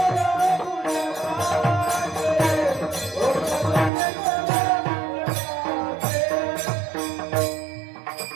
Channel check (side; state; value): left; drops out; at 3.9 s